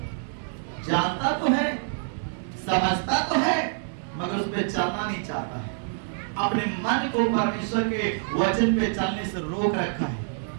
जानता तो है, समझता तो है, मगर उस पर चलना नहीं चाहता है। अपने मन को परमेश्वर के वचन पे चलने से रोक रखा है,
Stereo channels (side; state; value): left; silent; digital silence